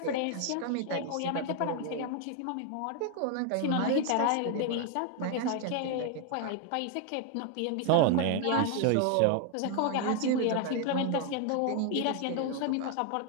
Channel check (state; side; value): different; both; correlation 0.00